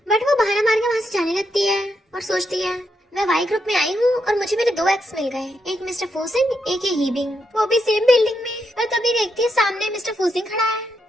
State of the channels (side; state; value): both; normal; correlation 0.81